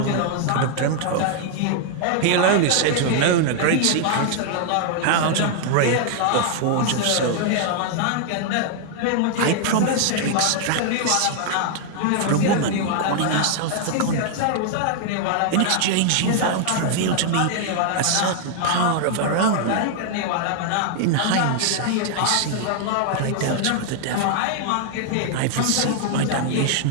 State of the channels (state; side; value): different; both; correlation 0.00